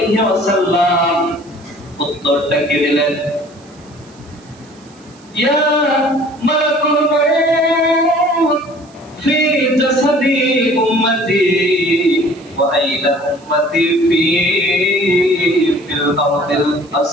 ওয়াসাল্লাম উত্তরটা কি দিলেন? ইয়া মালাকুল মউত ফি জাসাদি উম্মতি ওয়া আইলা উম্মতি ফিল আরদিল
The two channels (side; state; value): right; noise; hiss, 28 dB below the sound